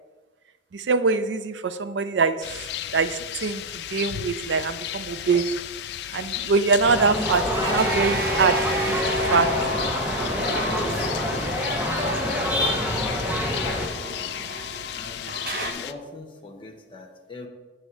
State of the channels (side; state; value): both; normal; correlation 0.00